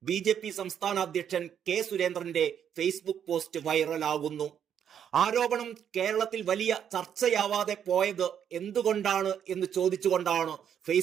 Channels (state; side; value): quieter; left; 8.8 dB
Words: ബി.ജെ.പി. സംസ്ഥാന അധ്യക്ഷൻ കെ സുരേന്ദ്രന്റെ ഫേസ്ബുക്ക് പോസ്റ്റ് വൈറലാകുന്നു. ആരോപണം കേരളത്തിൽ വലിയ ചർച്ചയാവാതെ പോയത് എന്തുകൊണ്ടാണ് എന്ന് ചോദിച്ചുകൊണ്ടാണ്